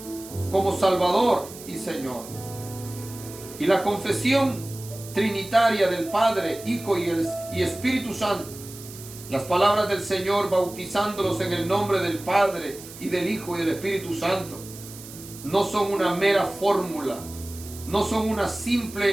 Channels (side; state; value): right; noise; hiss, 16 dB below the sound